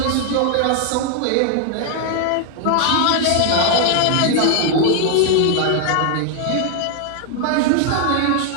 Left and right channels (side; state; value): both; different; correlation 0.00